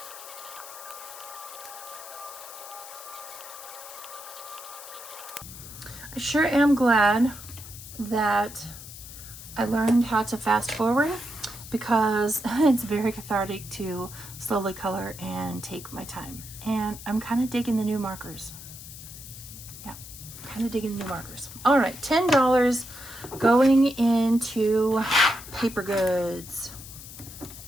I sure am glad that I learned how to fast forward, because it's very cathartic to slowly color and take my time. And I'm kind of digging the new markers. Yeah, kind of digging the new markers. All right, $10 going into paper goods.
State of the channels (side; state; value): left; noise; hiss, 14 dB below the sound